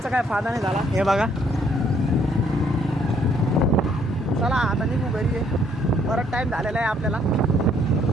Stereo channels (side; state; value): both; normal; correlation 0.66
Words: काय फायदा नाही झाला. हे बघा, चला आता निघू घरी आहे. बराच टाईम झालेला आहे आपल्याला.